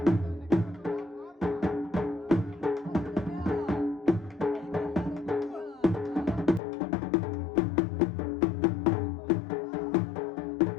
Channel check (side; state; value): right; drops out; at 6.6 s